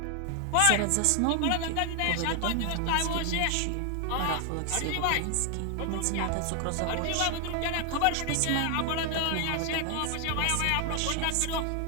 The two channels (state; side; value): different; both; correlation 0.00